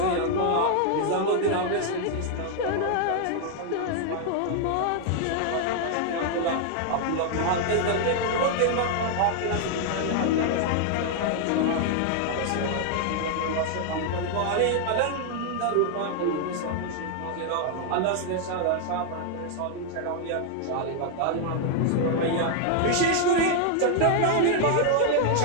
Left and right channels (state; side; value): different; both; correlation 0.00